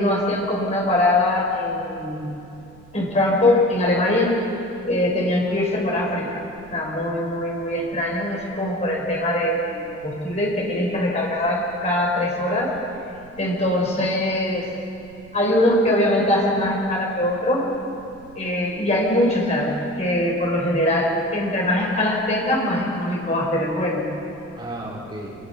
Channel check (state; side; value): noise; right; rumble, 23 dB below the sound